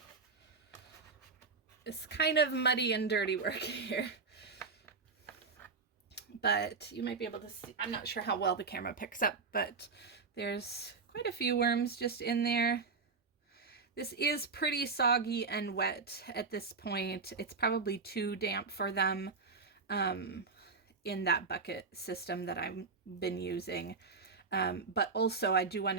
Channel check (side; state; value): left; quieter; 4.7 dB